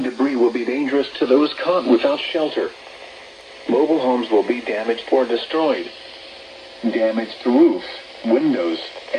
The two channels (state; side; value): identical; both; correlation 1.00